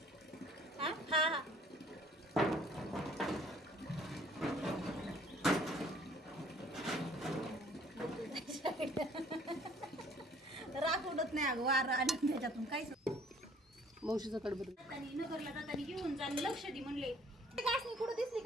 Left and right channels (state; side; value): normal; both; correlation 0.57